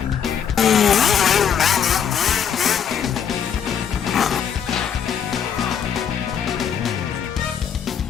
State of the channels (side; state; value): right; quieter; 8.0 dB